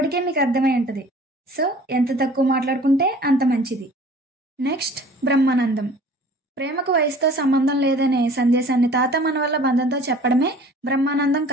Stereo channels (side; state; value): both; normal; correlation 0.48